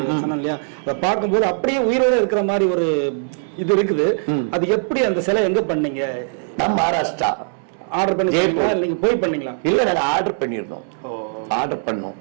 இல்லையா, அதை பார்க்கும்போது அப்படியே உயிரோட இருக்கிற மாதிரி ஒரு இது இருக்குது. அது எப்படி அந்த சிலை எங்க பண்ணீங்க? நான் மகாராஷ்டிரா ஆர்டர் பண்ணி நீங்க போய் பண்ணீங்களா? இல்ல நாங்க ஆர்டர் பண்ணிருந்தோம். ஆர்டர் பண்ணோம்.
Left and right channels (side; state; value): left; silent; digital silence